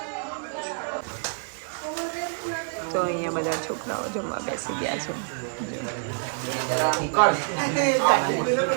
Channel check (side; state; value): left; silent; 60 dB below the other